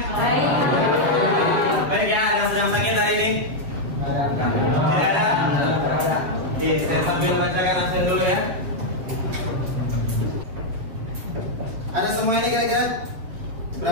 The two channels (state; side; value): late; left; 7.5 ms